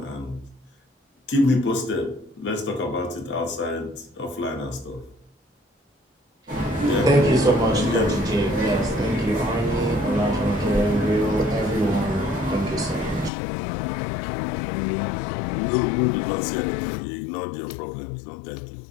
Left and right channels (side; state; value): right; drops out; at 13.3 s